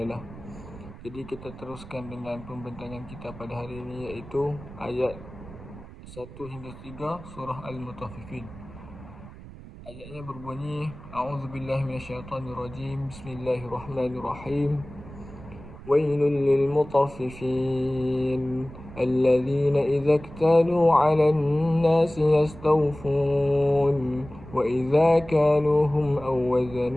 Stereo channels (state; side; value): noise; right; rumble, 16 dB below the sound